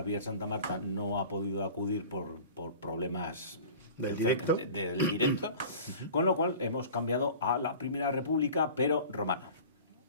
Santa Marta no ha podido acudir por problemas del directo. Del directo, con lo cual hemos cambiado a la Primera República, pero romana.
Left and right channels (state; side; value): inverted; both; correlation -0.40